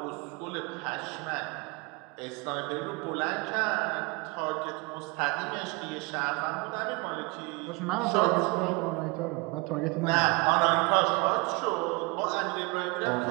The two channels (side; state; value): left; quieter; 26.9 dB